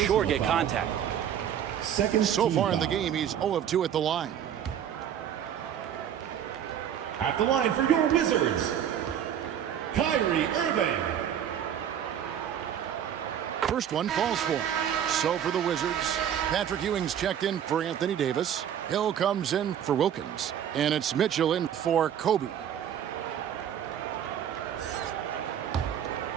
get contact. So far in the game, he's 0 of 2 at the line. At the line for your Wizards, Kyrie Irving. First one falls for him. So for the Wizards, Patrick Ewing's checked in for Anthony Davis. Hill comes in for Wilkins. And it's Mitchell in for Kobe.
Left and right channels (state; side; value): quieter; left; 9.5 dB